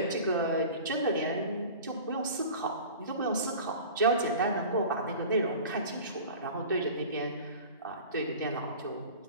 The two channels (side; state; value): both; inverted; correlation -0.39